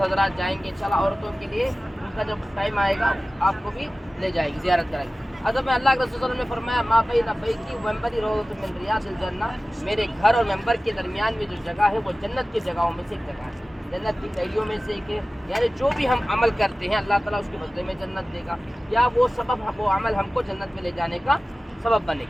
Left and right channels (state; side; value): normal; both; correlation 0.96